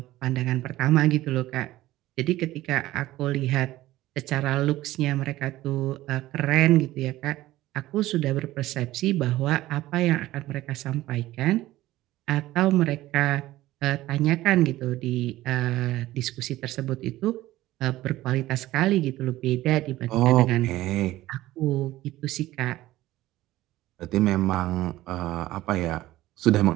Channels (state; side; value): quieter; left; 16.1 dB